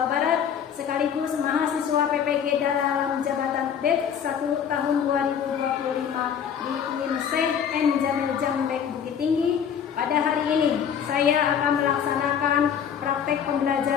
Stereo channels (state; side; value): quieter; right; 8.1 dB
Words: Barat, sekaligus mahasiswa PPG dalam jabatan BED 1 tahun 2025 di UIN Syekh N. Jamil Jambek Bukit Tinggi. Pada hari ini, saya akan melaksanakan praktek